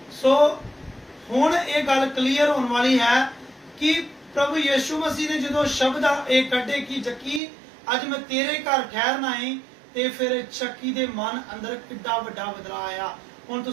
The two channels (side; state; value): left; drops out; at 7.4 s